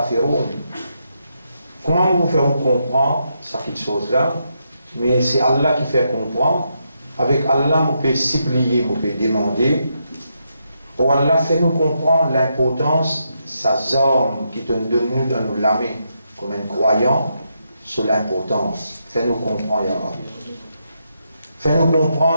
Comment vous faire comprendre cette chose-là? Mais c'est Allah qui fait comprendre. Avec Allah, vous pouvez supplier, vous pouvez demander. Pour Allah, fait nous comprendre l'importance, sa zone qui donne de nous dans nous l'âmer comme un croyant sur l'importance. Fait nous comprendre, Ya Rabbi. Fait nous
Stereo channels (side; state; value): both; inverted; correlation -0.81